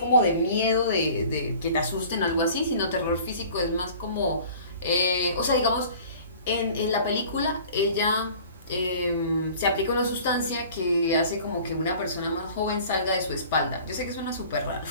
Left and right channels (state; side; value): inverted; both; correlation -0.46